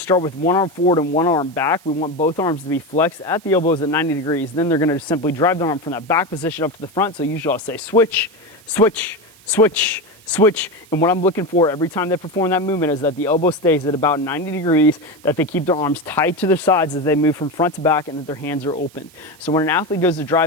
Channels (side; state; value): right; noise; hiss, 26 dB below the sound